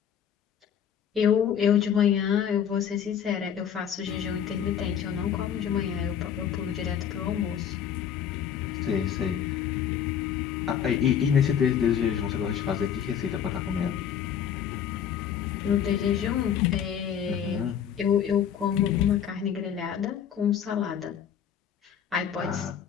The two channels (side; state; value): right; quieter; 8.6 dB